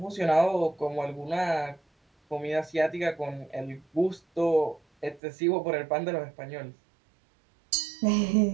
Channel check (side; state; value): left; drops out; at 5.2 s